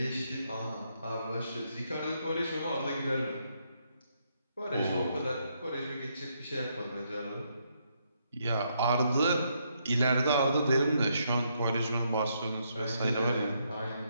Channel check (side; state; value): both; inverted; correlation -0.76